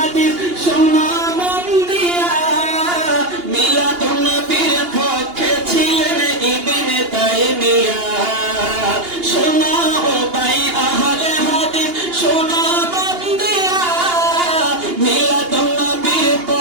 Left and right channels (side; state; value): left; late; 2.8 ms